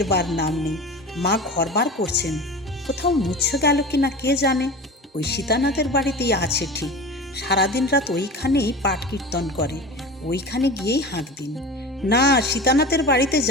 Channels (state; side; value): normal; both; correlation 0.33